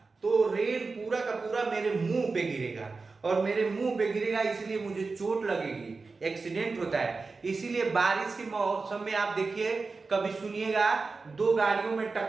तो रेन पूरा का पूरा मेरे मुंह पे गिरेगा, और मेरे मुंह पे गिरेगा इसलिए मुझे चोट लगेगी, एक्सीडेंट होता है। इसीलिए बारिश के मौसम में आप देखिए, कभी सुनिएगा दो गाड़ियों में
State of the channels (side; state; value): left; quieter; 4.1 dB